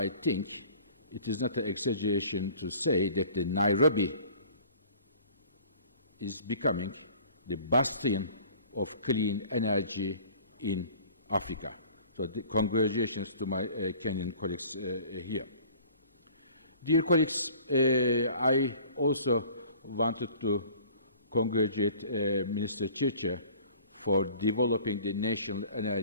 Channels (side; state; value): both; inverted; correlation -0.49